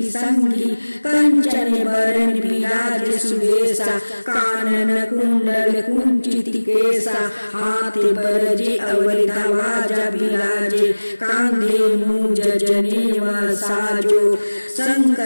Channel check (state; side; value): inverted; both; correlation -1.00